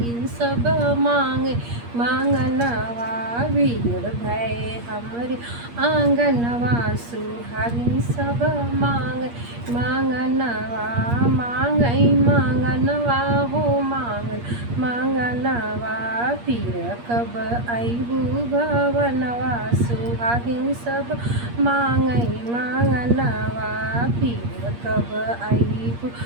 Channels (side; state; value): left; late; 8.5 ms